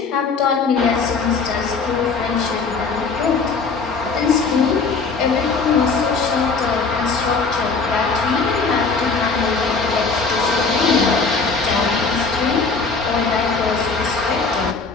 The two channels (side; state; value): right; quieter; 4.6 dB